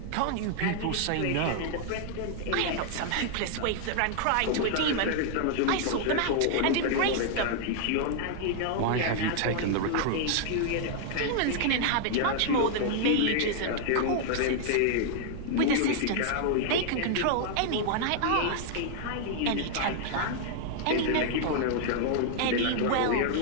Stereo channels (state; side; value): different; both; correlation 0.00